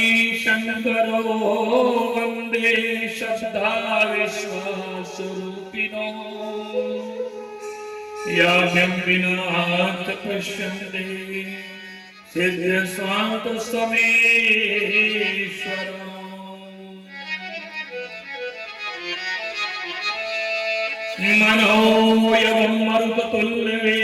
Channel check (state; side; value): identical; both; correlation 1.00